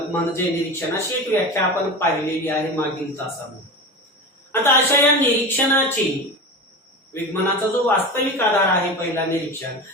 म्हणजे निरीक्षण, अशी एक व्याख्या आपण पाहिलेली आहे मागील तासामध्ये। आता अशा या निरीक्षणाची, विगमनाचा जो वास्तविक आधार आहे पहिला निरीक्षण,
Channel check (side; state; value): both; normal; correlation 0.27